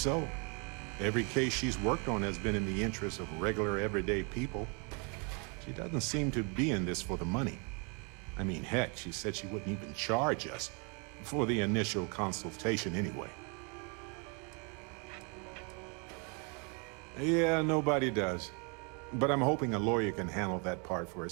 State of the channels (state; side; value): quieter; left; 34.7 dB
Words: Every case she's worked on has been in the interest of regular, everyday people. She doesn't seem to be in this for the money. I mean, heck, she said she wouldn't even charge us for the initial consultation anyway. Yeah, nobody does. But I'm hoping a lawyer can handle that part for